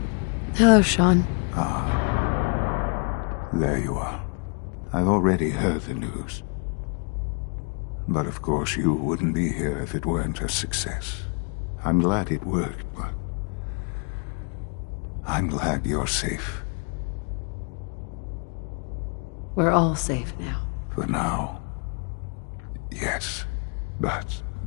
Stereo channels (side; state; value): right; quieter; 38.3 dB